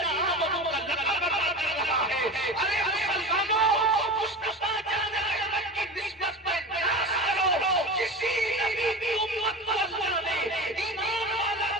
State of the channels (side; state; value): both; normal; correlation 0.30